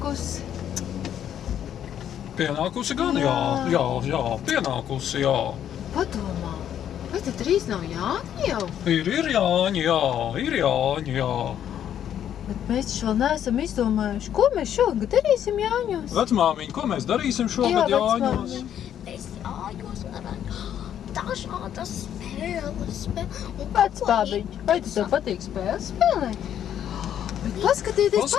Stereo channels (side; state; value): right; quieter; 10.0 dB